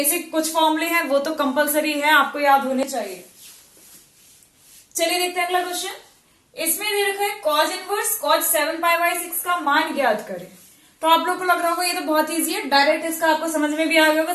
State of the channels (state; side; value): identical; both; correlation 1.00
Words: कुछ फॉर्मूले हैं वो तो कंपलसरी है, आपको याद होने चाहिए। चलिए देखते हैं अगला क्वेश्चन। इसमें दे रखा है cause inverse cause 7 pi by 6 का मान ज्ञात करें। तो आप लोग को लग रहा होगा ये तो बहुत इजी है, डायरेक्ट इसका आपको समझ में भी आ गया होगा,